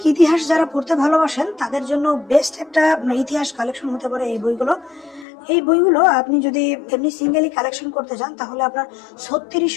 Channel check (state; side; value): drops out; right; at 5.2 s